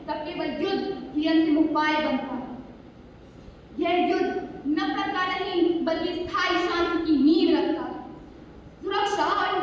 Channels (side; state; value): both; identical; correlation 1.00